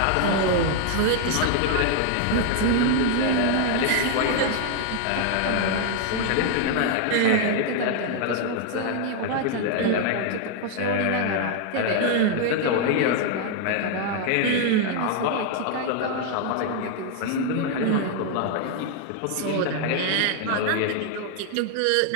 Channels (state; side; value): different; both; correlation 0.00